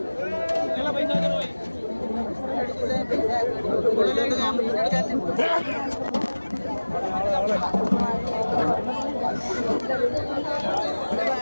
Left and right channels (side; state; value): both; inverted; correlation -1.00